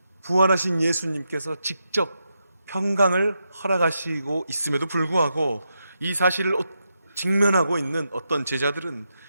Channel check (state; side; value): inverted; both; correlation -0.85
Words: 부활하신 예수님께서 직접 평강을 허락하시고 있음에도 불구하고 이 사실을 직면하고 있는 어떤 제자들은